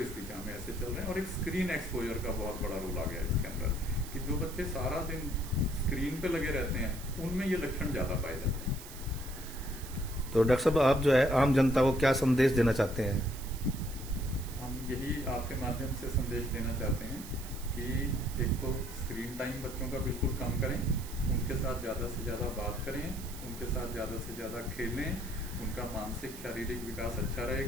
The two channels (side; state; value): right; noise; hiss, 14 dB below the sound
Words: दिशा में ऐसे चल रहे हैं। और एक स्क्रीन एक्सपोजर का बहुत बड़ा रोल आ गया इसके अंदर, कि जो बच्चे सारा दिन स्क्रीन पे लगे रहते हैं उनमें ये लक्षण ज़्यादा पाए जाते हैं। तो डॉक्टर साहब, आप जो है आम जनता को क्या संदेश देना चाहते हैं? हम यही आपके माध्यम से संदेश देना चाहते हैं कि एक तो स्क्रीन टाइम बच्चों का बिल्कुल कम करें, उनके साथ ज़्यादा से ज़्यादा बात करें, उनके साथ ज़्यादा से ज़्यादा खेलें, उनका मानसिक शारीरिक विकास अच्छा